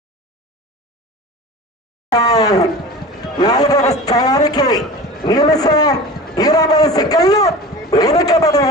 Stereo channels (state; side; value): normal; both; correlation 0.35